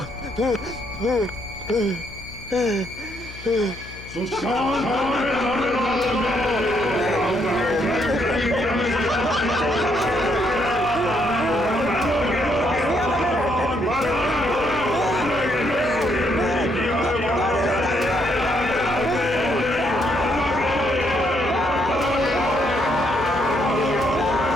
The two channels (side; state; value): left; noise; hum, 16 dB below the sound